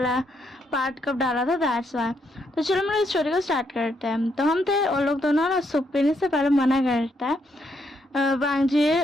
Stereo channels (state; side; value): normal; both; correlation 0.76